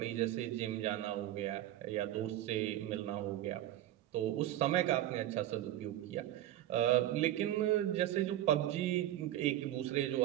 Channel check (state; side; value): quieter; left; 13.4 dB